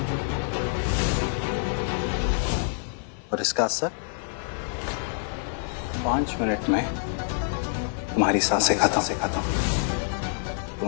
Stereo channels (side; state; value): right; silent; digital silence